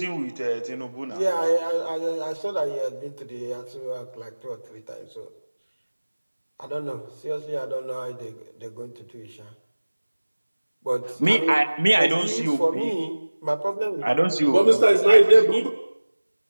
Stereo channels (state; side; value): inverted; both; correlation -1.00